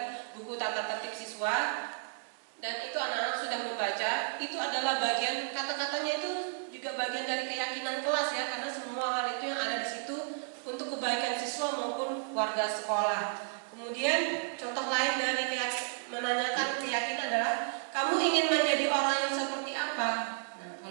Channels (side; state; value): left; silent; digital silence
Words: buku tata tertib siswa dan itu anak-anak sudah membaca. Itu adalah bagian kata-katanya itu juga bagian dari keyakinan kelas ya, karena semua hal itu yang ada di situ untuk kebaikan siswa maupun warga sekolah. Kemudian contoh lain dari menanyakan keyakinan adalah kamu ingin menjadi orang yang seperti apa? Nah,